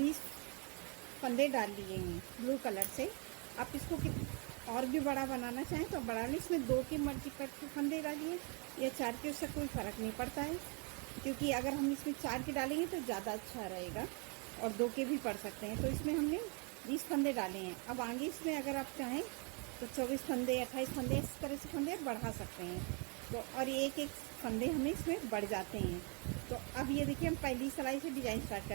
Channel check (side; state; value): left; quieter; 35.2 dB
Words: फंदे डाल लिए हैं ब्लू कलर से। आप इसको और भी बड़ा बनाना चाहें तो बड़ा लें। इसमें 2 की मर्जी पर फंदे डालिए या 4 के, उससे कोई फ़र्क नहीं पड़ता है, क्योंकि अगर हम इसमें 4 के डालेंगे तो ज़्यादा अच्छा रहेगा और 2 के भी पड़ सकते हैं। तो इसमें हमने 20 फंदे डाले हैं। अब आगे इसमें अगर आप चाहें तो 24 फंदे 28 फंदे इस तरह से फंदे बढ़ा सकते हैं। तो और एक एक फंदे हमें इसमें बढ़ जाते हैं। तो अब ये देखिए हम पहली सिलाई से डिज़ाइन स्टार्ट